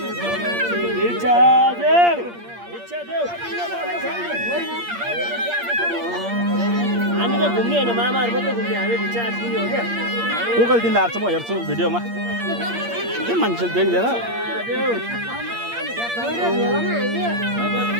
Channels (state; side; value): late; left; 8.6 ms